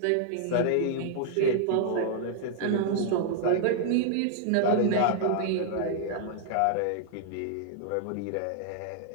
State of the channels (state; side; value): different; both; correlation 0.00